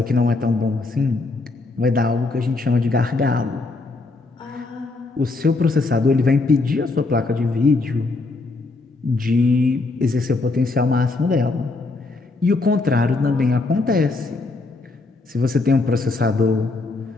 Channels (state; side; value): quieter; right; 3.5 dB